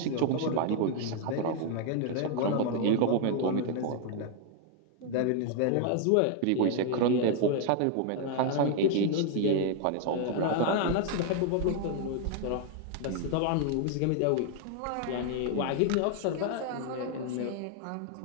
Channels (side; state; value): both; different; correlation 0.00